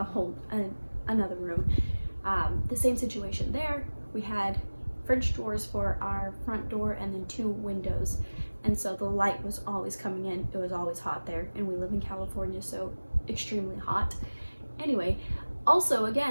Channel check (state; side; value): inverted; both; correlation -1.00